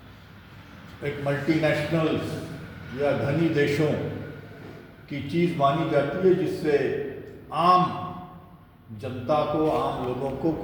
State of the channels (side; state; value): both; identical; correlation 1.00